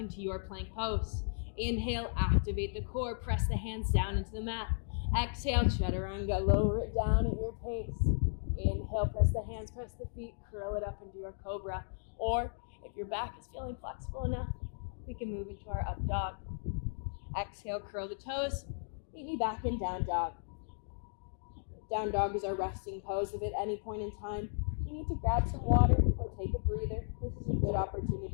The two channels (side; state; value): right; silent; digital silence